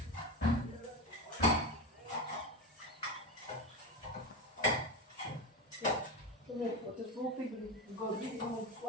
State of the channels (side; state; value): both; normal; correlation 0.18